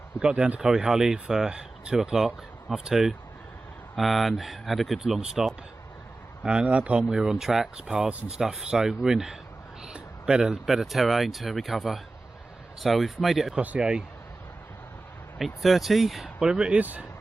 We got down to Corryhully for 2 o'clock, half 2, and had a good long stop. And at that point we were on tracks, paths and stuff, so we're in better terrain to recover. So we've made it across the A830, whatever it is,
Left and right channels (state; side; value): quieter; left; 3.1 dB